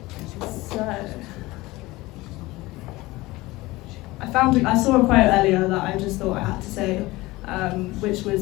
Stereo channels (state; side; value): quieter; right; 20.1 dB